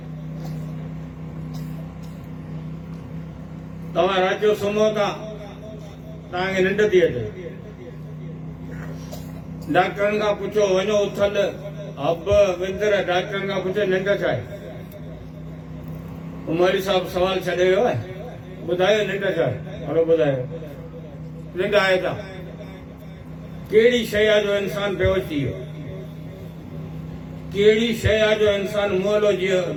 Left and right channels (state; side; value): identical; both; correlation 1.00